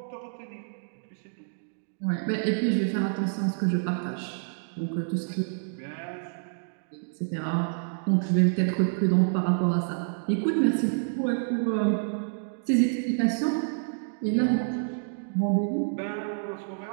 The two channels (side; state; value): left; silent; digital silence